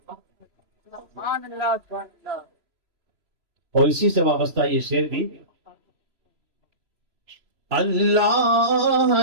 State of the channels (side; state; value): left; late; 3.0 ms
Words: اور اسی سے وابستہ یہ شعر بھی،